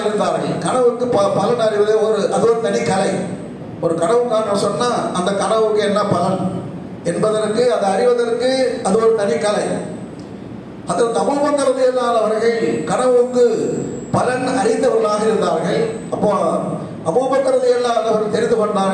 இருந்தார்கள். கனவுக்கு பலன் அறிவது அது ஒரு தனி கலை. ஒரு கனவு காண சொன்னா அந்த கனவுக்கு என்ன பலன் என்பதற்கு, அதை அறிவதற்கு அது ஒரு தனி கலை. ஹஜ்ரத் அபூபக்கர் ரலியல்லாஹு அவர்கள் கனவுக்கு பலன் அறிந்தவர்களாக இருந்தார்கள். அப்போ அபூபக்கர் ரலியல்லாஹு அவர்கள் தெரிந்து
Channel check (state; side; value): identical; both; correlation 1.00